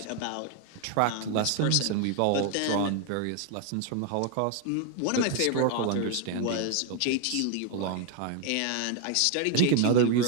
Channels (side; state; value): both; different; correlation 0.01